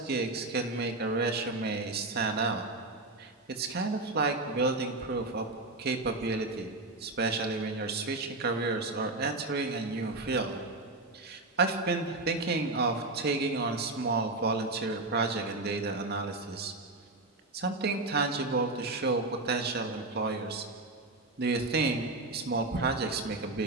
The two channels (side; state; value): left; quieter; 3.0 dB